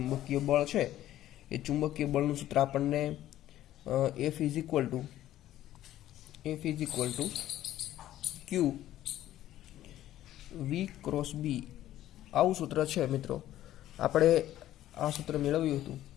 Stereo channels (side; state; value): right; quieter; 13.3 dB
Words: બળ છે એ ચુંબકીય બળનું સૂત્ર આપણને F = Q V × B આવું સૂત્ર છે મિત્રો। આપણે આ સૂત્ર મેળવ્યું હતું